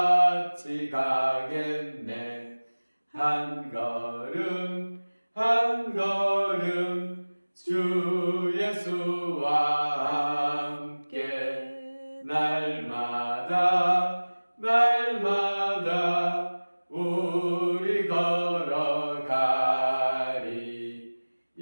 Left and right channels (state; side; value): inverted; both; correlation -1.00